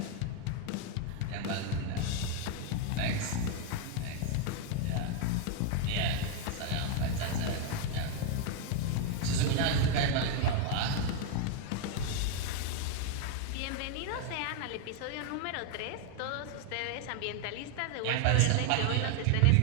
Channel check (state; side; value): different; both; correlation 0.01